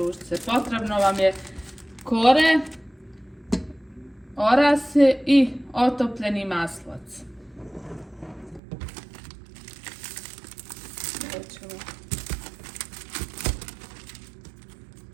Potrebno vam je kore, orase i otopljeni maslac.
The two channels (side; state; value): left; drops out; at 8.6 s